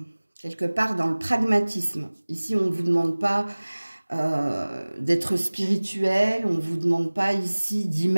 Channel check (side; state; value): both; inverted; correlation -1.00